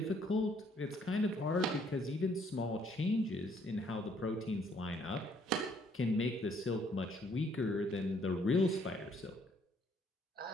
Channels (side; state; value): both; normal; correlation 0.66